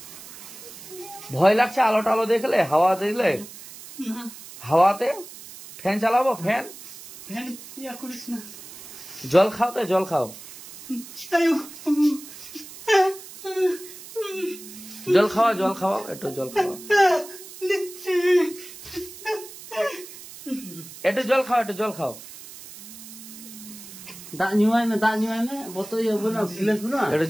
ভয় লাগছে আলো টালো দেখলে, হাওয়া দেখলে? হাওয়াতে ফ্যান চালাবো? ফ্যান জল খাও তো, জল খাও, জল খাওয়া, জল খাওয়াও, একটু জল খাওয়া, একটু জল খাও, একটু জল খাও, দাঁত নিমাই না, দাঁত নিমাই না, বোতল না, গিলাস না, একটু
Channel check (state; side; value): noise; right; hiss, 16 dB below the sound